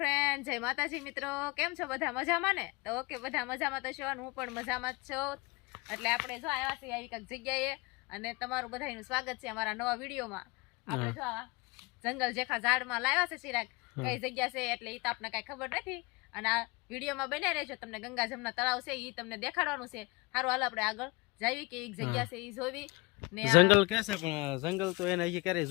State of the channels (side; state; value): right; quieter; 25.5 dB